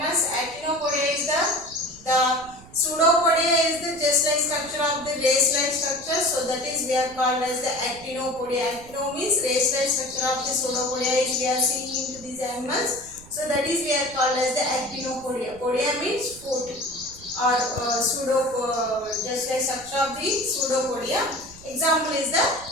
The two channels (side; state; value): right; noise; rumble, 21 dB below the sound